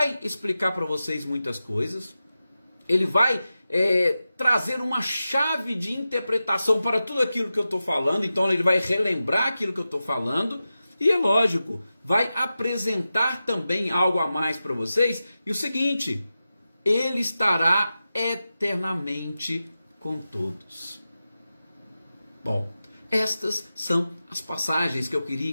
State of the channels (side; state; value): both; inverted; correlation -0.93